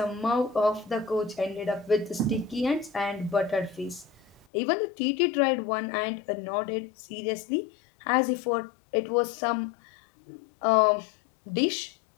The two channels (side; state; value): right; drops out; at 4.5 s